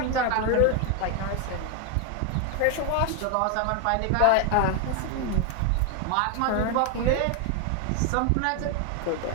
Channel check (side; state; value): both; different; correlation 0.01